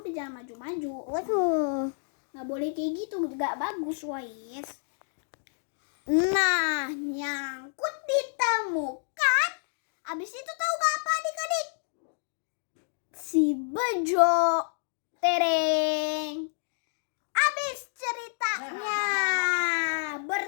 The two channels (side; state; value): right; silent; digital silence